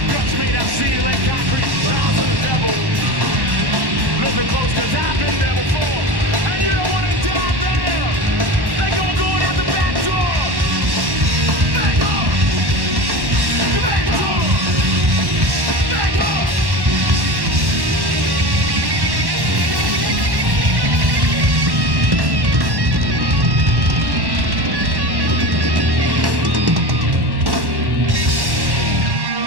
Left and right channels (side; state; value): left; late; 1.1 ms